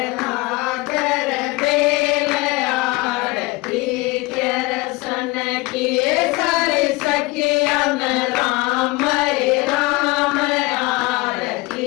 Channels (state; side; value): quieter; right; 22.7 dB